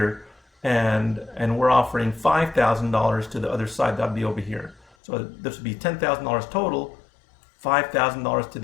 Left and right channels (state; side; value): drops out; right; at 4.9 s